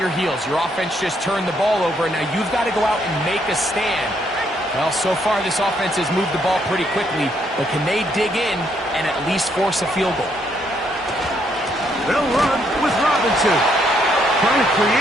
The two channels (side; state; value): both; normal; correlation 0.72